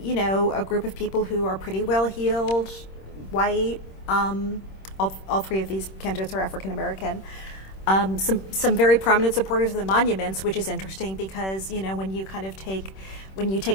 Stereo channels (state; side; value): late; right; 26 ms